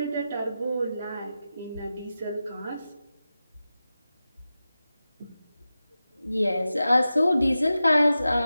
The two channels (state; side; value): inverted; both; correlation -0.93